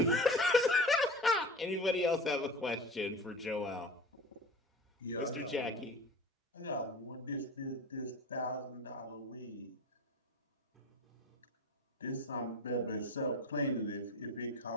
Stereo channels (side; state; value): both; normal; correlation 0.35